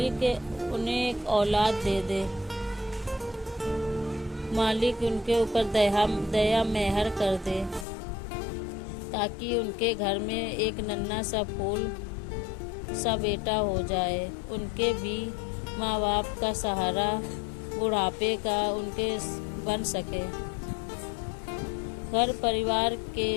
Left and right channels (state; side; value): drops out; right; at 7.9 s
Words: उन्हें एक औलाद दे दे। मालिक उनके ऊपर दया मेहर कर दे ताकि उनके घर में एक नन्हा सा फूल सा बेटा हो जाए। उनके भी माँ बाप का सहारा बुढ़ापे का उनके बन सके। घर परिवार के